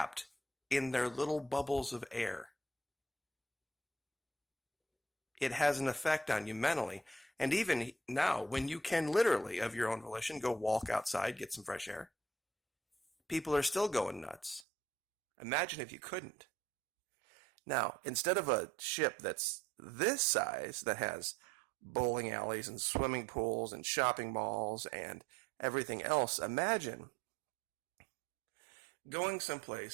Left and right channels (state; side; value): drops out; left; at 14.7 s